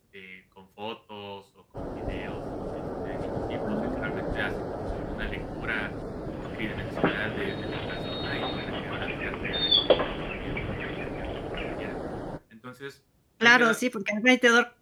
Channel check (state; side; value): identical; both; correlation 1.00